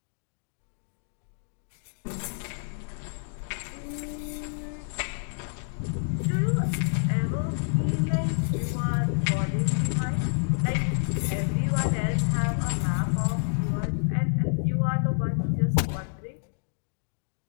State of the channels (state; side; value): silent; right; digital silence